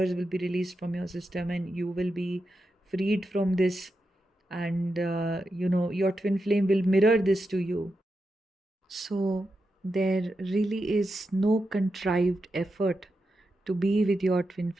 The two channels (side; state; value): both; normal; correlation 0.88